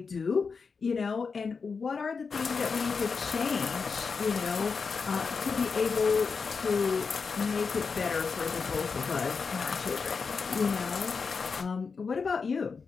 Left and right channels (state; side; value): quieter; right; 5.1 dB